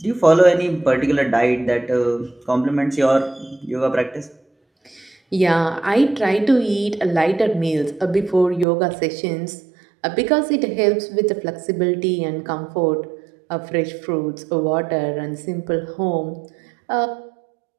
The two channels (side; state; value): left; drops out; at 8.7 s